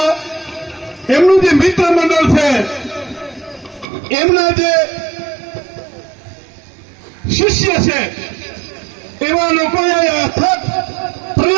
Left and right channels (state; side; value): drops out; left; at 3.9 s